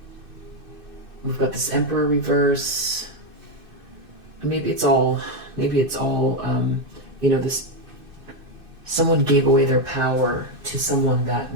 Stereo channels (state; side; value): late; left; 2.6 ms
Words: got this Emperor reverse. Maybe it's all, this, someone gave away their power to someone that